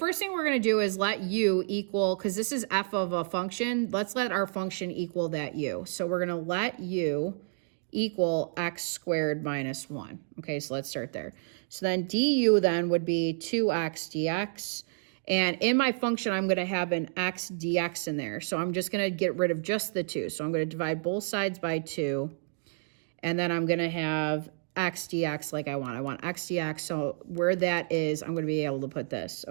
thing we're going to do is let u equal, because this is f of a function, let's let our function equal that u. So we're going to let u equal x squared minus 1. Okay, so let's start there. So then du then would be 2x dx. And in my function, I'm going to have an x dx in there. So I'm just going to get rid of just the 2. So I'm going to divide both sides by 2. And then I'm going to have x dx like I want. I want x dx. So where that is, I'm going to be able to put this,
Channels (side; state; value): left; silent; digital silence